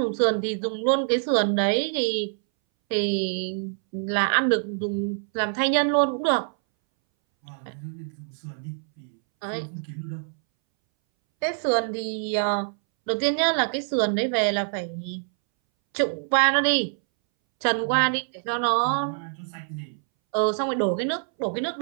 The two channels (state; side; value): silent; left; 61 dB below the other